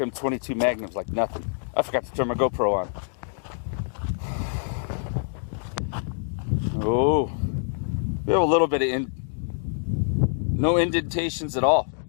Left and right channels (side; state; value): right; silent; digital silence